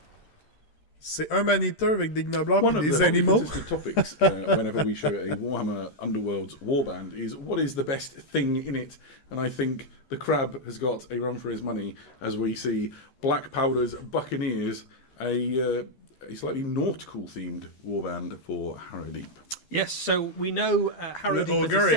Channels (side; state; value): right; late; 13 ms